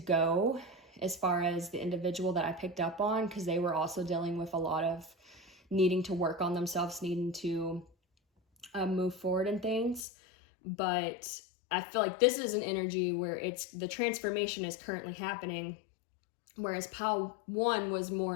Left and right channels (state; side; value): drops out; right; at 10.1 s